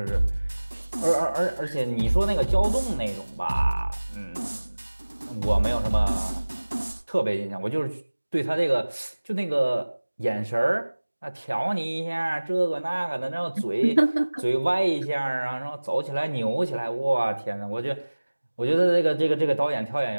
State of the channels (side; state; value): both; inverted; correlation -1.00